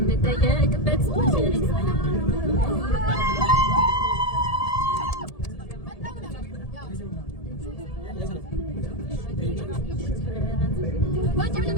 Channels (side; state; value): right; late; 1.7 ms